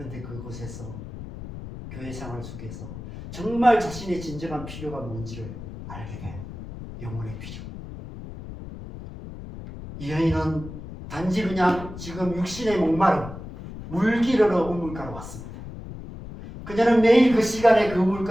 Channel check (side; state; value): left; noise; rumble, 11 dB below the sound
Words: 그곳에서 교회 생활 속에서 정말 자신의 진정한 필요가 뭔지를 알게 돼요. 영혼의 필요. 이 여인은 단지 그냥 지금 육신의 목마름, 물 기르러 우물가로 왔습니다. 그녀는 매일 그 시간에 그